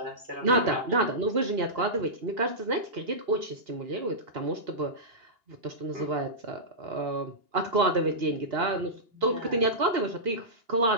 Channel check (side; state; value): left; late; 2.8 ms